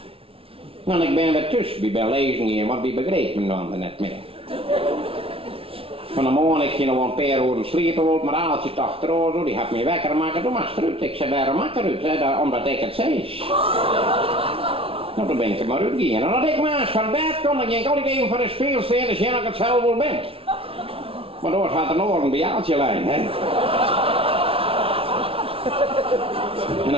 Want ik ben weer tussen, ik ben lezen hier, want die begreep me dan net meer. Van de morgen ik ging nog een paar uur sliepen, maar als je het achterover, die had me wekker maken, doe maar eruit. Ik zei, waarom maak eruit? Omdat ik het zei. Nou, dan ben ik er maar uitgegaan. En als ik maar eens van bed kom, dan ging ik altijd even voor de speel staan, dus jij dat ik het zelf wel ben. Maar door gaat een oren bij Aaltje lijn, hè. En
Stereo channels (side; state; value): left; late; 0.27 ms